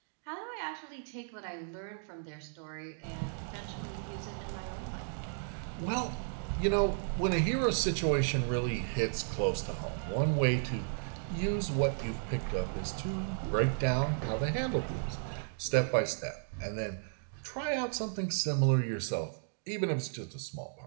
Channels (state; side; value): silent; left; digital silence